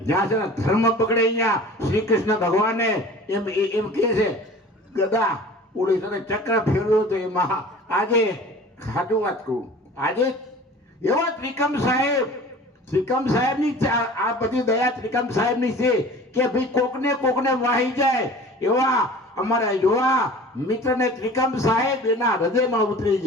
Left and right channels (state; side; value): normal; both; correlation 0.42